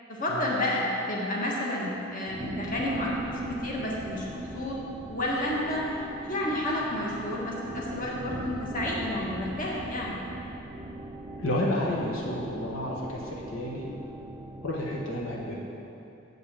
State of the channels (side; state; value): both; normal; correlation 0.30